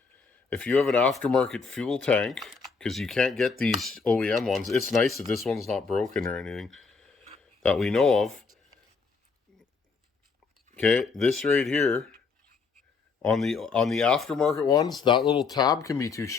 If you have an aftermarket fuel tank, because you can't get these OEM ones, it's nice that this one's not broken or anything that we know of. Okay, this right here, on the aftermarket ones, that little tab can be too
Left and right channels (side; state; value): right; quieter; 4.9 dB